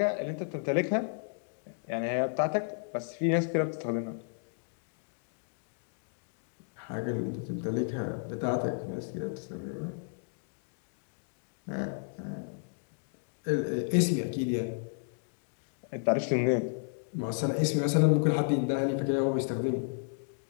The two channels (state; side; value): silent; right; digital silence